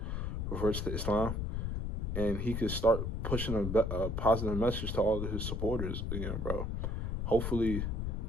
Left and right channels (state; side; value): noise; left; rumble, 1 dB below the sound